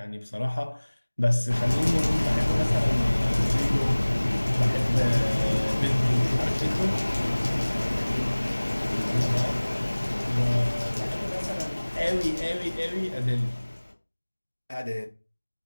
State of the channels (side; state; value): both; inverted; correlation -1.00